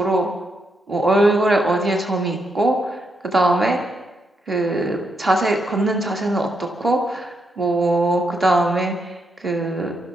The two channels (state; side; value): normal; both; correlation 0.80